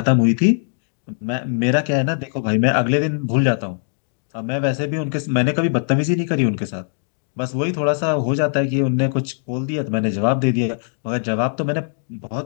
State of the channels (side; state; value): right; silent; 65 dB below the other